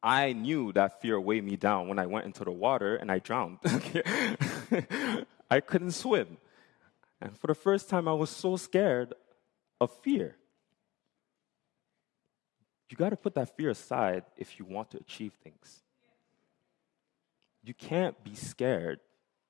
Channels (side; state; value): right; quieter; 18.8 dB